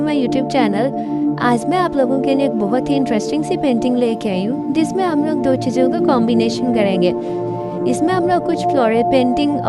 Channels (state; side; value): identical; both; correlation 1.00